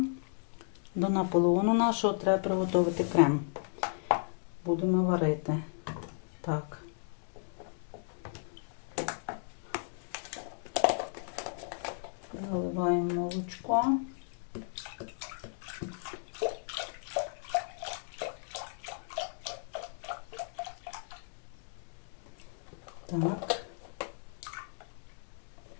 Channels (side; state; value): right; silent; digital silence